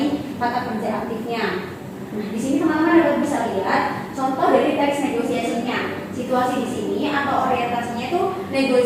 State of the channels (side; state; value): both; identical; correlation 1.00